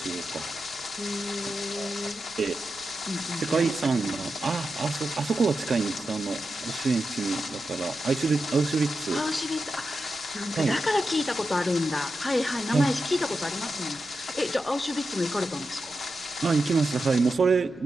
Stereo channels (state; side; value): noise; left; rumble, 27 dB below the sound